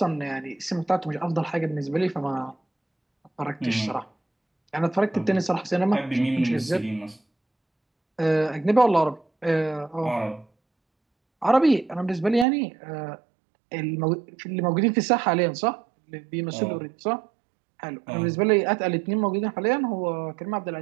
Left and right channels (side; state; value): left; drops out; at 12.5 s